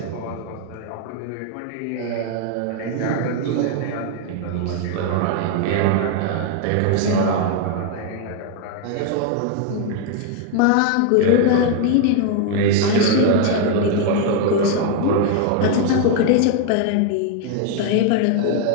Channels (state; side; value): different; both; correlation 0.00